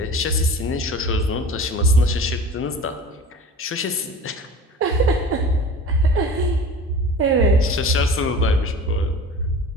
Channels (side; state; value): both; normal; correlation 0.38